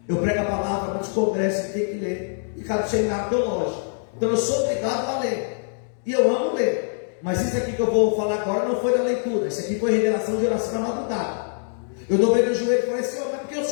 Eu prego a palavra, muitos congressos tem que ler, e cada seminário teológico. Então eu sou obrigado a ler, e eu amo ler. Mas isso aqui que eu vou falar agora não foi da leitura, isso aqui foi revelação de oração na madrugada. Eu dobrei meu joelho e falei, Senhor, mas por que o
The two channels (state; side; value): silent; right; digital silence